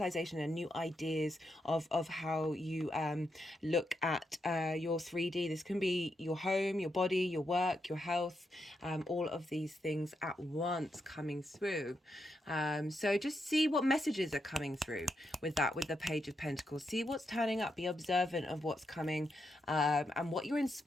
and new ideas of how you look at your 3D. This can be your your home, your body, your work, your health, all of these things at once coming through. So just see what messages are coming through with that, with the Page of Pentacles. See what's turning up, be observant of what's coming, and what you're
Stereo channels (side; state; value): both; normal; correlation 0.83